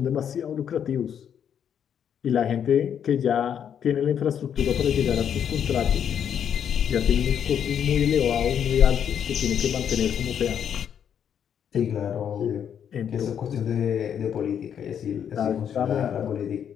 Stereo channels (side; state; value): right; quieter; 8.6 dB